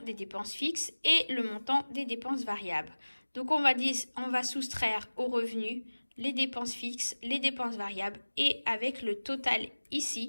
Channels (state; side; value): inverted; both; correlation -1.00